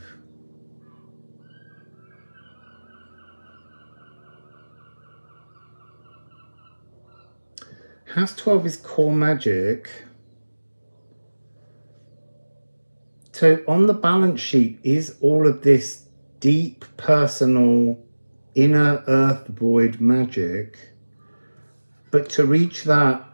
House 12 is core magic. So on the balance sheet is all of this deep, personal, inner earth void magic. But to reach that,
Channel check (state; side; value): inverted; both; correlation -1.00